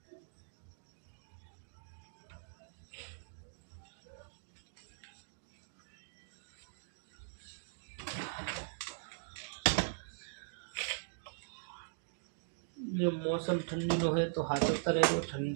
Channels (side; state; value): left; silent; digital silence